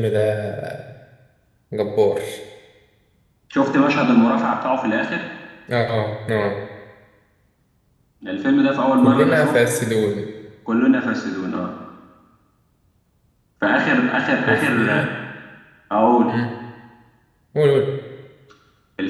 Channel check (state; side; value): identical; both; correlation 1.00